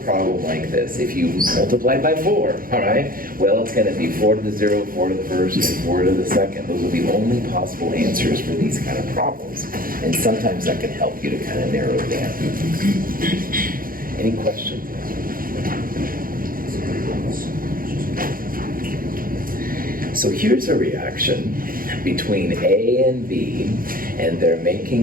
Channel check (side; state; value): left; late; 0.41 ms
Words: problem like this, if you multiply by 4, all right, well, it's going to be 4 to the 0, 4 to the first, and 4 to the second. Those are the only possible answers for these kind of problems. And sometimes that can help you to kind of narrow it down. Any questions? So here's a reaction between A and B, and they're